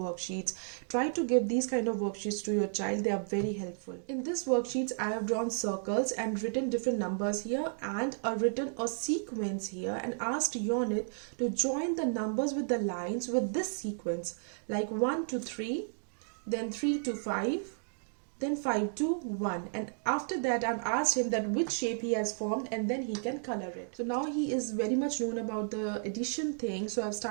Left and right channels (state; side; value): silent; left; digital silence